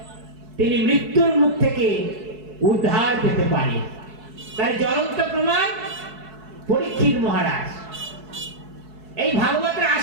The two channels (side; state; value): left; late; 4.7 ms